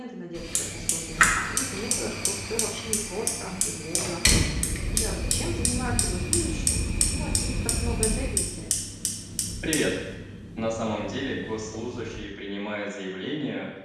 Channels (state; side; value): identical; both; correlation 1.00